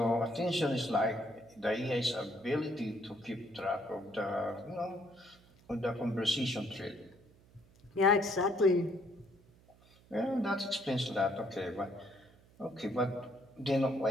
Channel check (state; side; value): noise; right; hum, 27 dB below the sound